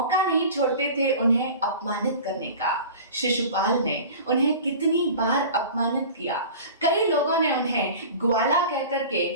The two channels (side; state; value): both; inverted; correlation -0.38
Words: नहीं छोड़ते थे उन्हें अपमानित करने का। शिशुपाल ने उन्हें कितनी बार अपमानित किया। कई लोगों ने उन्हें ग्वाला कहकर के